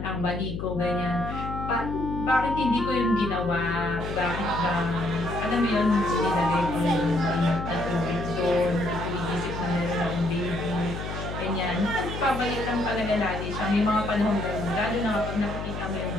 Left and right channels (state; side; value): noise; left; hum, 6 dB below the sound